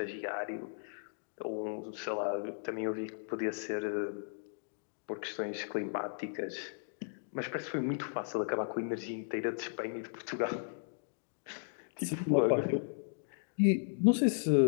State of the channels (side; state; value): right; silent; digital silence